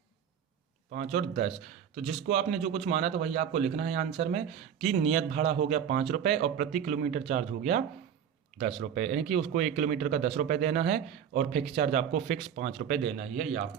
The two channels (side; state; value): left; quieter; 8.4 dB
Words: 10। तो जिसको आपने जो कुछ माना तो वही आपको लिखना है आंसर में, कि नियत भाड़ा हो गया 5 रुपये और प्रति किलोमीटर चार्ज हो गया 10 रुपये, यानी कि उसको 1 किलोमीटर का 10 रुपये देना है और फिक्स चार्ज आपको फिक्स 5 रुपये देना ही है। ये